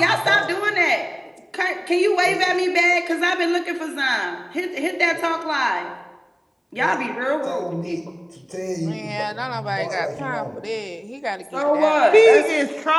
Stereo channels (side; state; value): both; identical; correlation 1.00